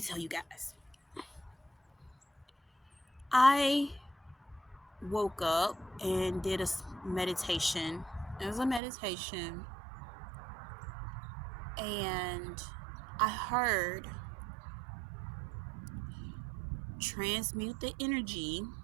tell you guys. I woke up and did a meditation. It was a meditation, and I heard transmute the energy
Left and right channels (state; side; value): drops out; left; at 8.8 s